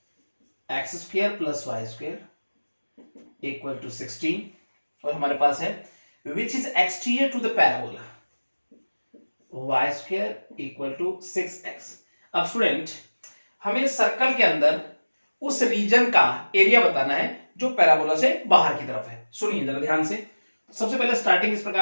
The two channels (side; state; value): both; inverted; correlation -1.00